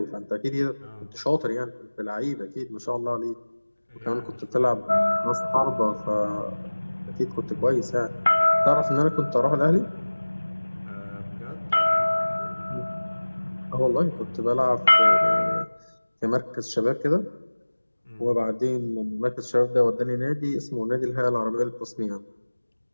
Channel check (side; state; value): both; inverted; correlation -1.00